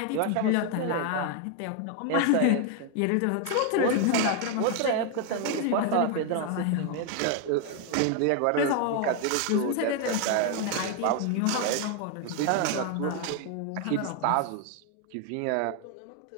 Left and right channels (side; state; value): both; different; correlation 0.01